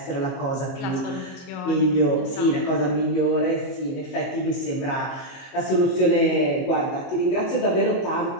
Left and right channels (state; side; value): late; right; 22 ms